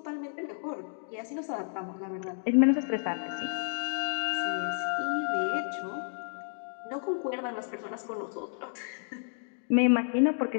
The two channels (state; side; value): silent; right; digital silence